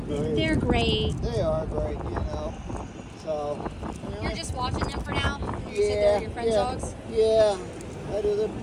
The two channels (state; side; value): identical; both; correlation 1.00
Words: they're great. They are great, you know. So. You're just watching them for now. You said they're your friend's dogs. Yeah. I do the